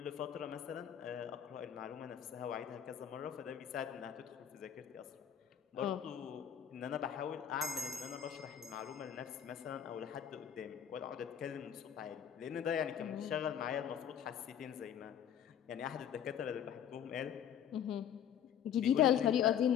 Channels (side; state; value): right; quieter; 9.1 dB